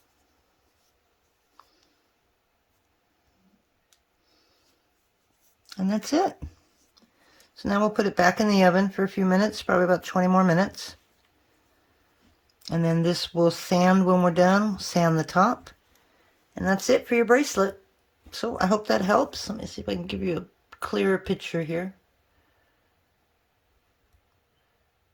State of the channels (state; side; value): identical; both; correlation 1.00